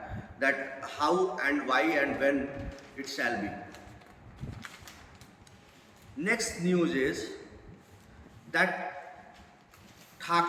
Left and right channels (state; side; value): identical; both; correlation 1.00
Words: that how and why and when it shall be. Next news is that